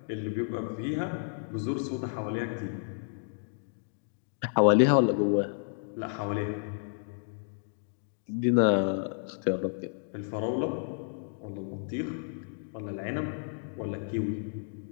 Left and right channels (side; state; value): right; silent; digital silence